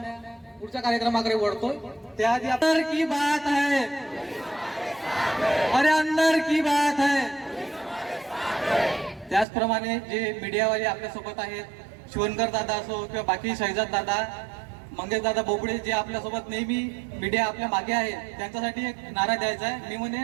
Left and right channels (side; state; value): left; drops out; at 9.5 s